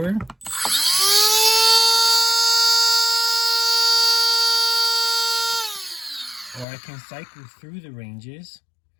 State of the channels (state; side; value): drops out; right; at 6.7 s